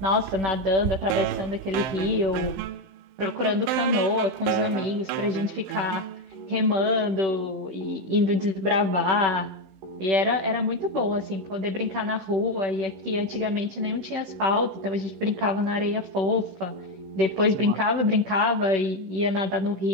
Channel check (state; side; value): late; left; 16 ms